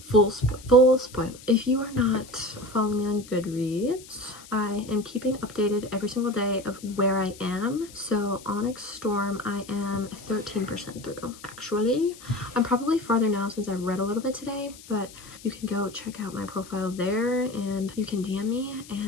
full spoil. If you are not following me on Goodreads, I am keeping updated every single day of where I am. So Onyx Storm, I am 13% through. Actually, I'm probably farther now since I've read a little bit today, but you can go check out my profile there and you can DM me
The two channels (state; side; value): noise; left; hiss, 19 dB below the sound